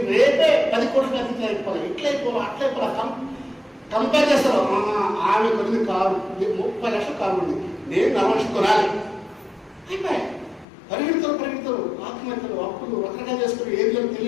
రేపే 10 కోట్ల అధిక అయిపోవాలి, ఇట్లయిపోవాలి, అట్లయిపోవాలి. కంపేర్ చేస్తారు. ఆమె కొద్ది కారు 30 లక్షల కారు ఉంది, నేను 40 లక్షలు కొనాలి. అయిపోయాయి. పరిగెడతారు, ఆత్మహత్యలు, అప్పులు రకరకాలు చేసుకుని ఏదో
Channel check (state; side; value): drops out; right; at 10.7 s